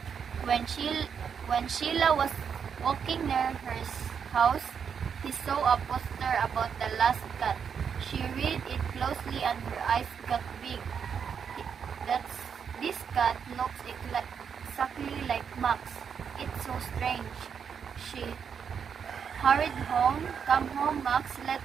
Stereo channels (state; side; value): quieter; left; 7.0 dB